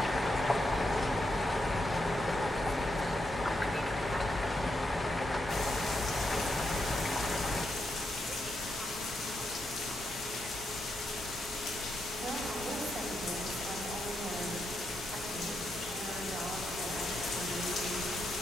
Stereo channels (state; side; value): normal; both; correlation 0.82